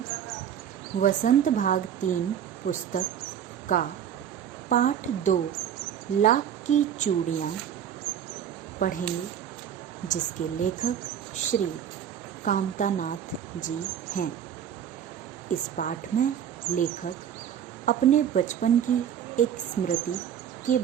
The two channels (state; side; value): quieter; left; 9.2 dB